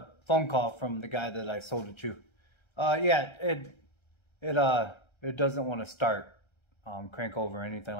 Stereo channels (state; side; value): late; right; 1.3 ms